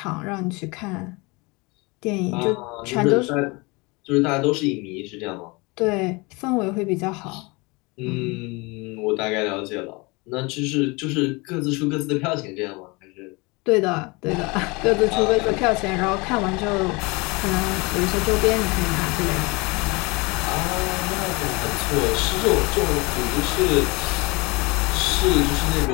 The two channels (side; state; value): right; quieter; 26.3 dB